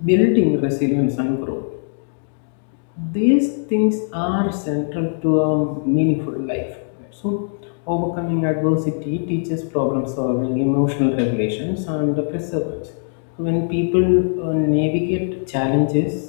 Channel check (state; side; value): silent; right; digital silence